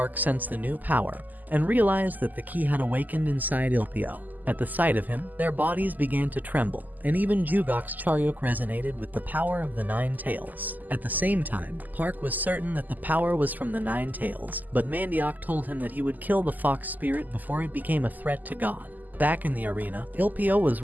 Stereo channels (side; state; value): left; late; 0.083 ms